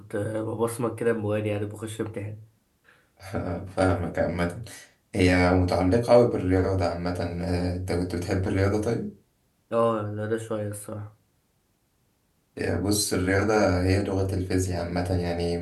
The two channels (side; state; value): both; identical; correlation 1.00